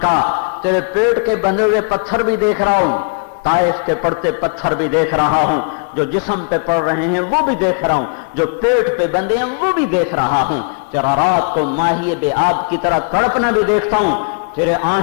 کا، تیرے پیٹ کے بندھے ہوئے پتھر بھی دیکھ رہا ہوں، طائف کے پڑتے پتھر بھی دیکھ رہا ہوں، جو جسم پہ پڑ رہے ہیں وہ بھی دیکھ رہا ہوں، جو پیٹ پہ بندے ہیں وہ بھی دیکھ رہا ہوں، تیرا رات کو ماہی بے آب کی طرح تڑپنا بھی دیکھتا ہوں، تیرے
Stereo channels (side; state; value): right; quieter; 36.9 dB